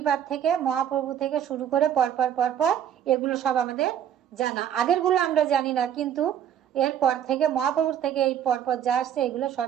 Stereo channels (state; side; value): quieter; left; 9.7 dB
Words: থেকে, মহাপ্রভু থেকে শুরু করে পরপর এগুলো সব আমাদের জানা। আগের গুলো আমরা জানি না, কিন্তু এরপর থেকে মহাপ্রভুর থেকে এই পরপর যা আসছে এগুলো